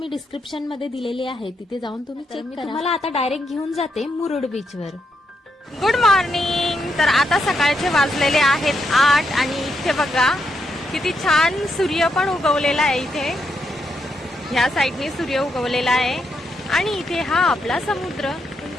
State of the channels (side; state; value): both; normal; correlation 0.81